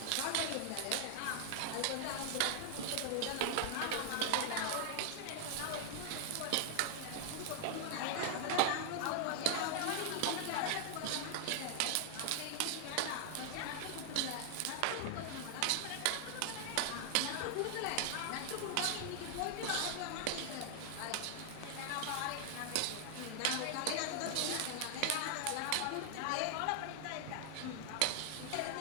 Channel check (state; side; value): different; both; correlation 0.00